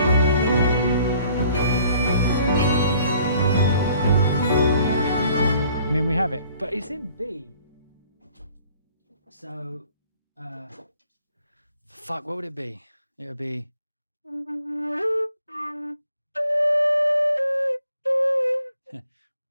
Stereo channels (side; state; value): both; inverted; correlation -0.59